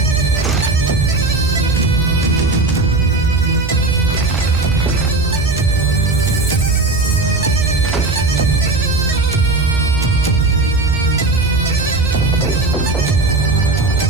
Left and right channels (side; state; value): left; quieter; 3.2 dB